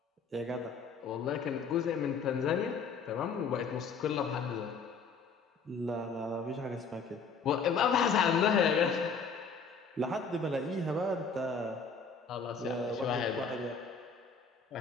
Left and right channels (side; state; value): right; quieter; 5.1 dB